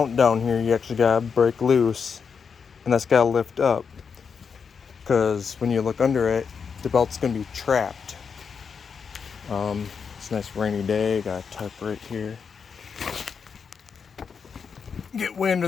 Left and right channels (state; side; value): quieter; right; 6.1 dB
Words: down here you actually got to break loose, and that's got to lift up. Because when you look under it, the belt's going to be trapped. It's a nice rainy day, got a tarp right here. Get way under